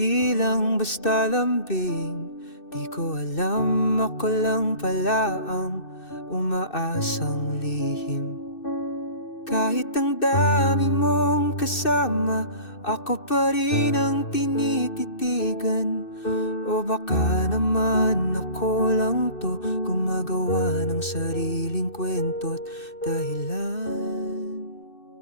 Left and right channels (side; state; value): right; late; 2.6 ms